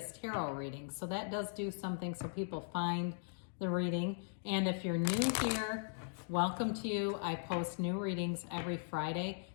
tarot readings. So that does do something so people find the reading. And if you're new here, welcome to you. I post new readings every Friday,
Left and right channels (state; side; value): silent; right; digital silence